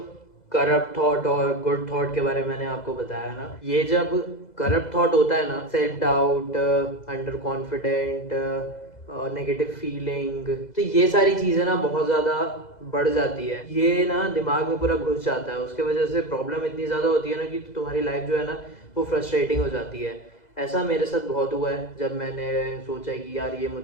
करप्ट थॉट और गुड थॉट के बारे में मैंने आपको बताया ना, ये जब करप्ट थॉट होता है ना, self doubt, under confident, negative feeling, तो ये सारी चीज़ें ना बहुत ज़्यादा बढ़ जाती है, ये ना दिमाग में पूरा घुस जाता है। उसके वजह से प्रॉब्लम इतनी ज़्यादा होती है ना कि तुम्हारी लाइफ जो है ना वो फ्रस्ट्रेटिंग हो जाती है। ऐसा मेरे साथ बहुत हुआ है जब मैंने सोचा कि यार ये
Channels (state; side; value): late; right; 2.0 ms